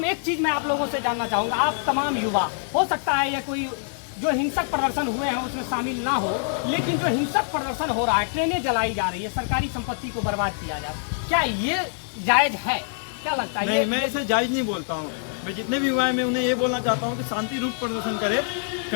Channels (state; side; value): silent; right; digital silence